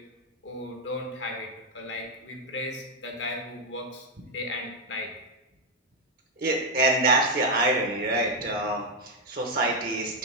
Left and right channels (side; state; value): both; normal; correlation 0.02